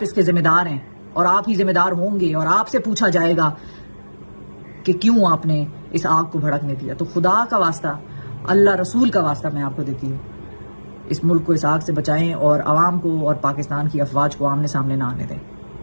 اس کے ذمہ دار ہیں اور آپ ہی ذمہ دار ہوں گے، اور آپ سے پوچھا جائے گا کہ کیوں آپ نے اس آگ کو بھڑکنے دیا. تو خدا کا واسطہ، اللہ رسول کا واسطہ میں آپ کو دیتی ہوں، اس ملک کو اس آگ سے بچائیں اور عوام کو اور پاکستان کی افواج کو آمنے سامنے نہ آنے دیں.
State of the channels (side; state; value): both; inverted; correlation -1.00